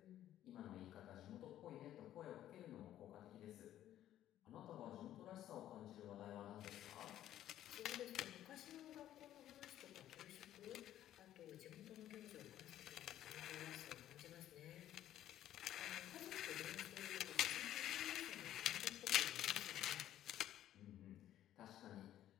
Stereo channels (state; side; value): quieter; right; 12.3 dB